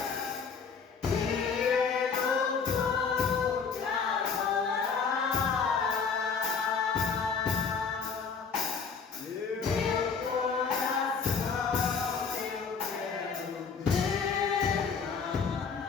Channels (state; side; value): quieter; right; 5.7 dB